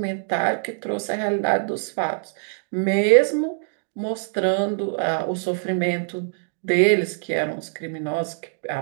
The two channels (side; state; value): left; silent; digital silence